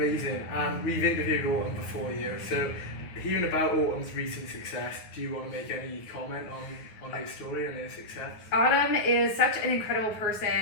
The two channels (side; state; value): right; late; 9.5 ms